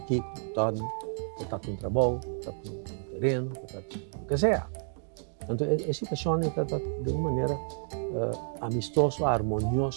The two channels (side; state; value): left; silent; digital silence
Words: Kiko, todo, botar um trabalho, botar um terreno, botar o que seja. Então, a situação está de uma maneira amistosa,